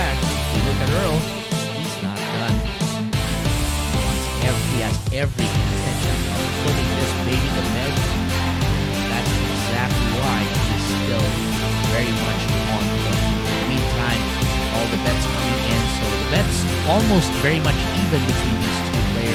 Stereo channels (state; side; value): identical; both; correlation 1.00